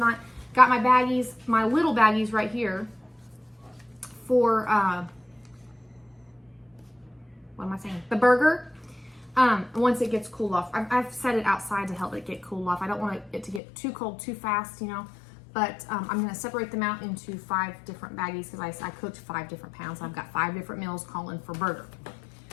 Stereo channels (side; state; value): right; drops out; at 13.6 s